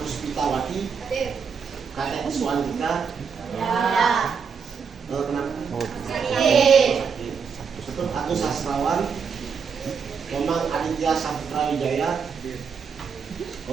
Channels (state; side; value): quieter; left; 6.2 dB